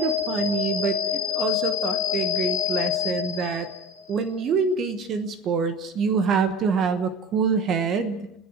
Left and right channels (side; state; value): both; normal; correlation 0.34